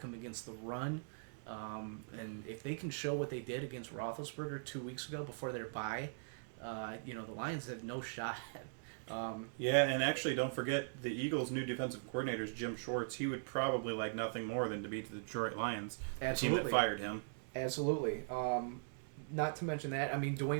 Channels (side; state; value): left; silent; digital silence